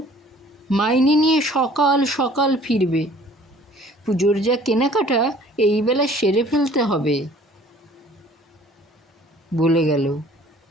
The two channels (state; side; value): normal; both; correlation 0.53